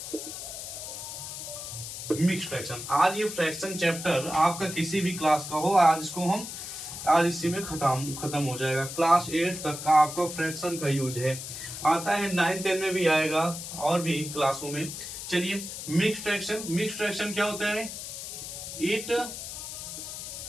मिक्स्ड फ्रैक्शन। आज ये फ्रैक्शन चैप्टर आपका किसी भी क्लास का हो, आज इसी में खत्म हो जाएगा। क्लास 8 तक का आपका फ्रैक्शन का यूज है, आता है 9, 10 में भी आएगा और भी क्लासों में। चलिए मिक्स्ड फ्रैक्शन क्या होता है? It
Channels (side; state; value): left; noise; hiss, 8 dB below the sound